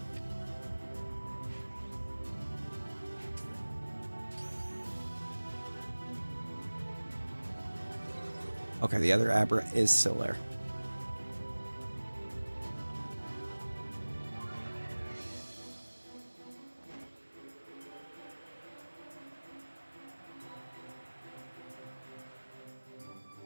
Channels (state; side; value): inverted; both; correlation -1.00